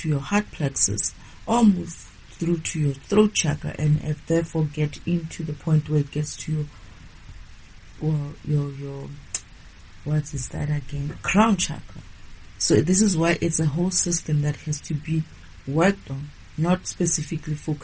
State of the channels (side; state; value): both; identical; correlation 1.00